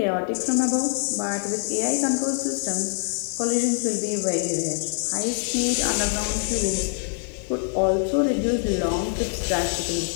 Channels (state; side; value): silent; right; 56 dB below the other